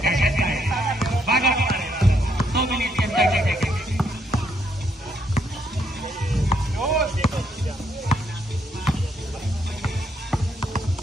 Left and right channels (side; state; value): both; normal; correlation 0.74